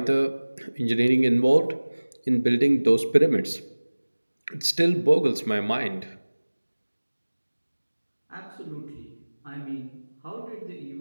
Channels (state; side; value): inverted; both; correlation -1.00